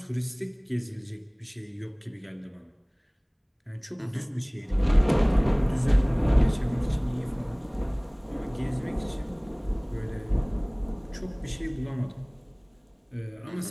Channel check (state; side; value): identical; both; correlation 1.00